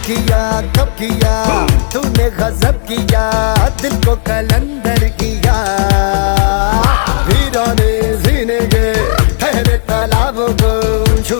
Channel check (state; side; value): silent; right; digital silence